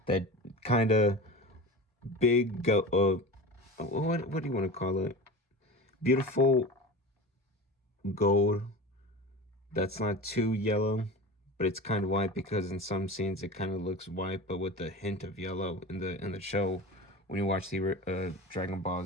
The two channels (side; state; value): both; normal; correlation 0.32